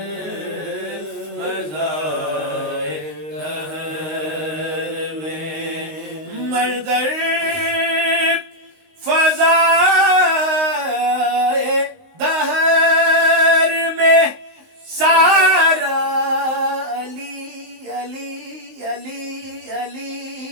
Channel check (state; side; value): late; left; 19 ms